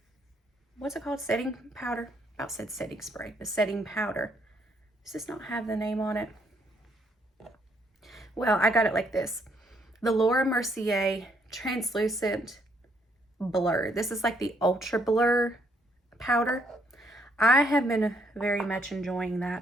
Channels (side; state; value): both; normal; correlation 0.70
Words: what's it called? Setting powder? I about said setting spray, but setting powder. Does this not have the name on it? Well, I got it like this. The Laura Mercier Translucent Blur. This is like the Ultra Blur powder. I have been very much enjoying